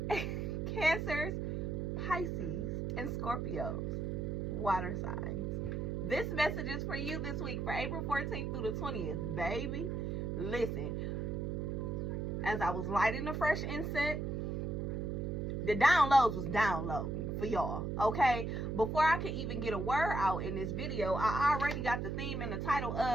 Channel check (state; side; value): noise; right; hum, 1 dB below the sound